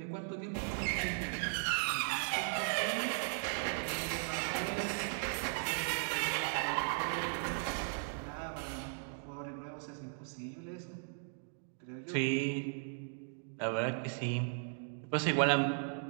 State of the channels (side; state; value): left; silent; digital silence